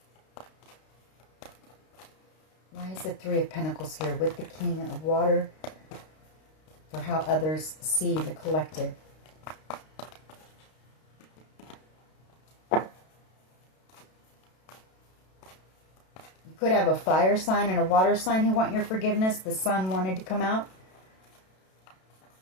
Why is the Three of Pentacles here with the King of Water? For how others see the collective. You could have a fire sign and a water sign who want your forgiveness. The Sun wanted to come out.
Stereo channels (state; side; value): late; right; 32 ms